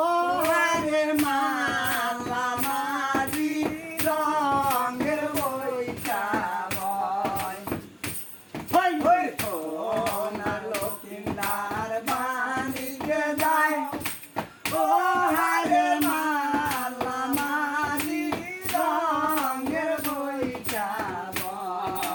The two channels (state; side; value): identical; both; correlation 1.00